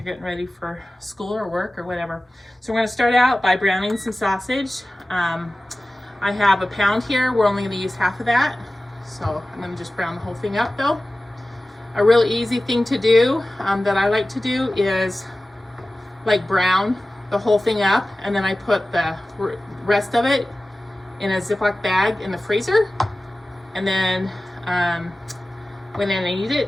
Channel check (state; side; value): normal; both; correlation 0.96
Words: getting ready for school or work or whatever. So we're going to start out by browning some sausage. I have a pound here. We're only going to use half of that. So I'm going to just brown the whole thing up though. A really easy thing to do that I like to do is brown the whole thing up, and then I put the rest of it in a Ziploc bag in the freezer, and then when I need